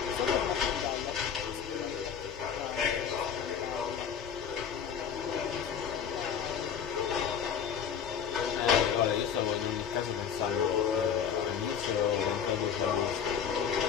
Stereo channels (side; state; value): right; quieter; 7.7 dB